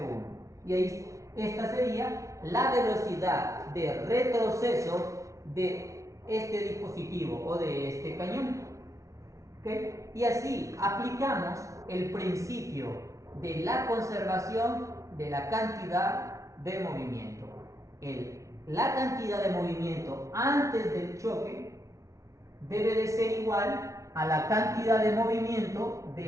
Y ahí esta sería la velocidad de retroceso de este dispositivo o de este cañón. ¿Okay? Y así aplicamos el principio de la conservación de la cantidad de movimiento. La cantidad de movimiento antes del choque debe de ser igual a la cantidad de movimiento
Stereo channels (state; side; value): late; left; 0.15 ms